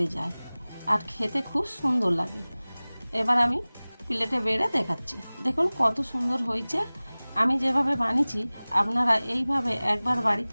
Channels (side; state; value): both; inverted; correlation -0.99